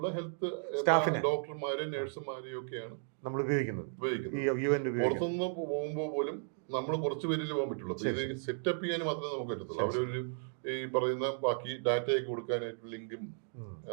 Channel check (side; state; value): left; silent; digital silence